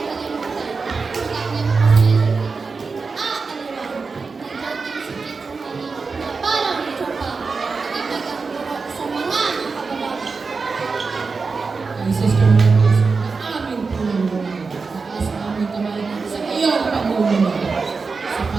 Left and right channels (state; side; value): quieter; left; 4.6 dB